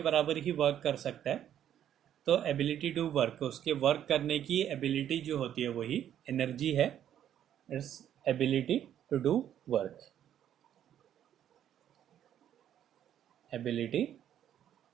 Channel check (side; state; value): left; quieter; 10.5 dB